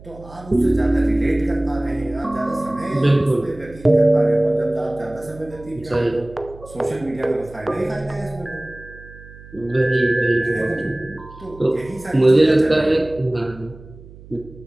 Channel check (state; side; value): noise; right; hum, 19 dB below the sound